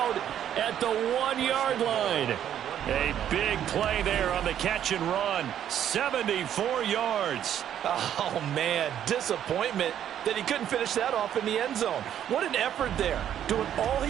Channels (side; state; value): left; quieter; 10.2 dB